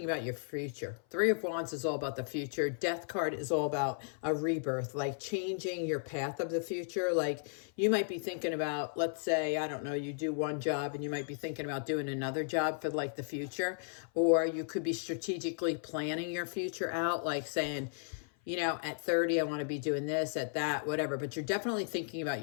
about your future. Three of Wands is all about the future. Death card is all about a rebirth, like changing your path of the future. Like you might be thinking about, let's say, I don't know, you do one job and you might be thinking about doing another job for like the future. Or you could be strategically planning your future out, like saying, you know, at 30, I want to be doing this, at that, whatever. But you're definitely thinking about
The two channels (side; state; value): right; silent; 55 dB below the other